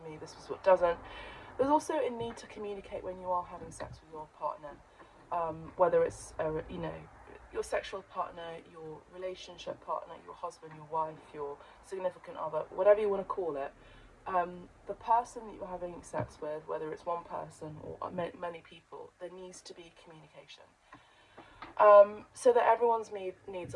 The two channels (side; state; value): both; identical; correlation 1.00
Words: me, this is what doesn't. There's also a need to communicate when you are having sex with your partner, whether it's, you know, your sexual partner, your relationship partner, your husband, your wife, your significant other, whatever you want to call it. The person that you're having sex with, whether it's one person or many people, there needs to be communication. So that everyone's needs